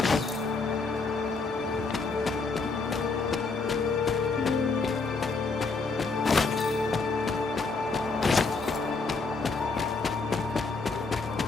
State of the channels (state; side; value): quieter; right; 4.2 dB